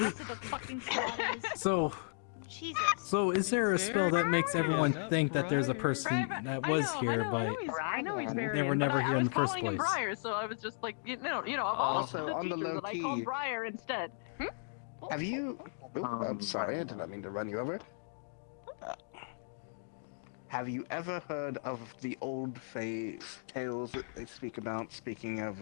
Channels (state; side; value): silent; right; digital silence